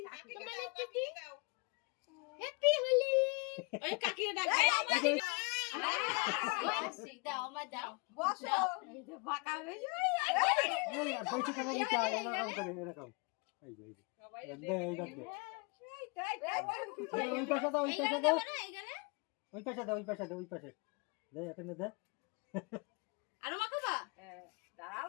হ্যাপি হোলি ওই কাকির ডাক দাও আমার দাও বসো এই যে বাঁকা হয়ে যায় এরকম ওই পাশে দাও ওই পাশে দাও ওই পাশে দাও ওই পাশে দাও ওই পাশে দে এখানে দে আরো মাখাবা দাঁড়াও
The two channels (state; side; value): quieter; right; 31.2 dB